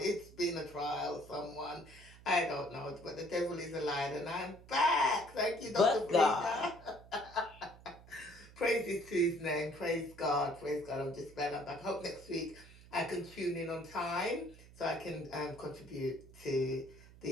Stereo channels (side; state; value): right; noise; hum, 21 dB below the sound